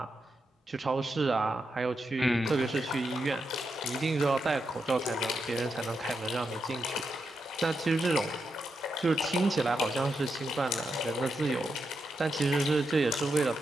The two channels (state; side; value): normal; both; correlation 0.85